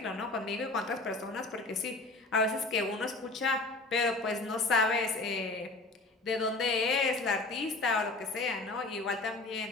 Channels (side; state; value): right; quieter; 3.1 dB